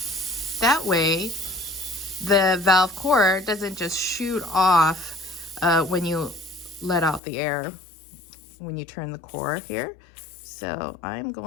That way, the valve core doesn't just shoot off when you let out the air, when you turn the core here. So I'm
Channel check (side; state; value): right; drops out; at 7.2 s